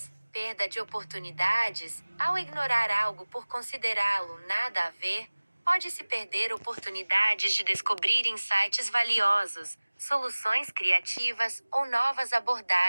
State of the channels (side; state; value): both; inverted; correlation -1.00